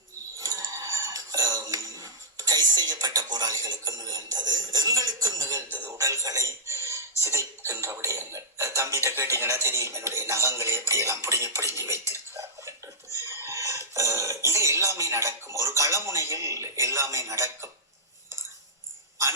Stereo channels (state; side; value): normal; both; correlation -0.11